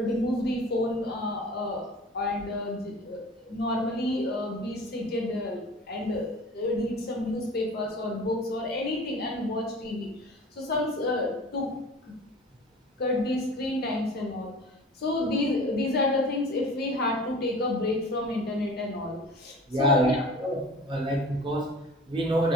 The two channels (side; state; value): both; normal; correlation 0.41